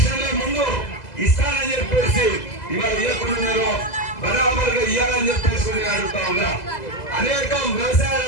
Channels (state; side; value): late; right; 2.0 ms